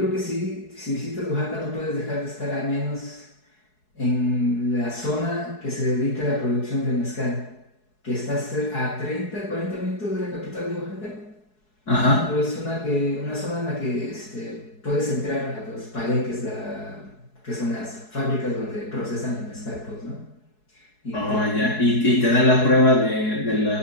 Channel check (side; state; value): right; late; 4.7 ms